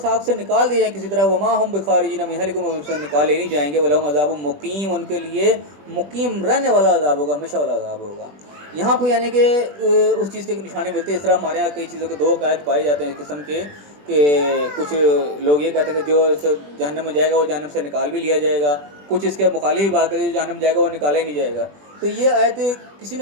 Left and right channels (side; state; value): left; late; 20 ms